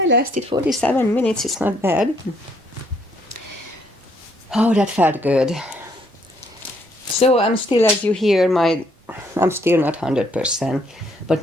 lasted 47 minutes, it's not bad. Oh, that felt good. So I'm still, as you hear, I'm still not 100%, but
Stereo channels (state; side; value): normal; both; correlation 0.69